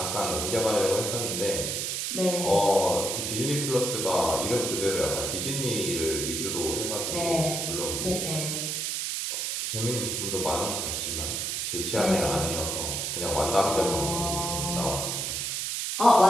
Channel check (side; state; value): right; noise; hiss, 1 dB below the sound